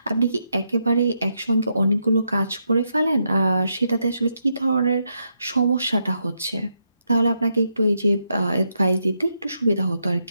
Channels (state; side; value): inverted; both; correlation -0.81